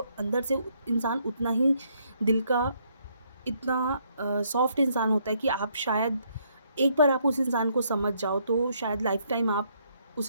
अंदर से इंसान उतना ही दिल का इतना सॉफ्ट इंसान होता है कि आप शायद एक बार आप उस इंसान को समझ जाओ तो शायद लाइफ़ टाइम आप उस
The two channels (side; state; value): both; inverted; correlation -0.71